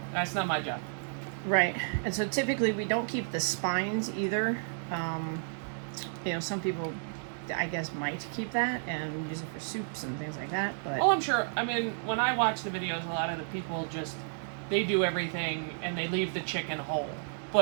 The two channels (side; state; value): left; silent; 56 dB below the other